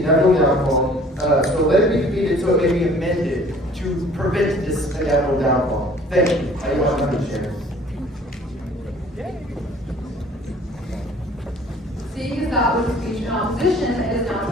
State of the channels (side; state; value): both; normal; correlation 0.52